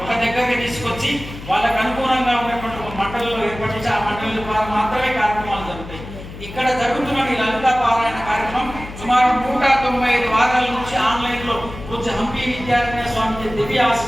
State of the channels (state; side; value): noise; left; hum, 13 dB below the sound